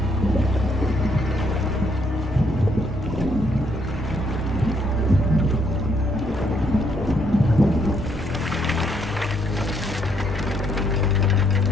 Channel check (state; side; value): normal; both; correlation 0.72